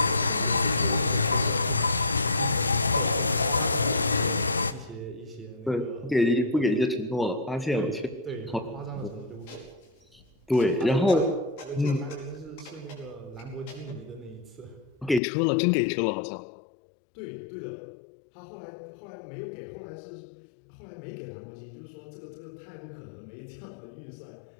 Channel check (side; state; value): right; drops out; at 15.2 s